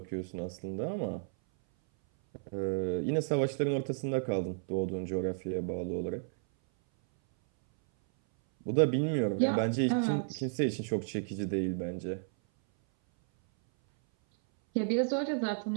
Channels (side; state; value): left; silent; 56 dB below the other